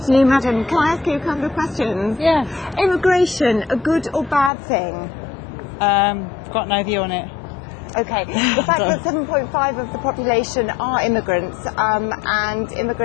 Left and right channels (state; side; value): drops out; right; at 4.5 s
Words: madam. Can I ask you a couple of questions? Yeah. Immigration, a good or bad thing? Got no view on it. Okay. The fact that 7.5% of the population are immigrants, and